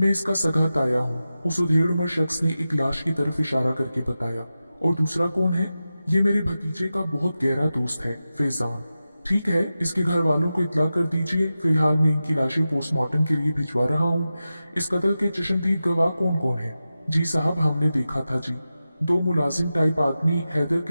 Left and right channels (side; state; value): both; inverted; correlation -0.93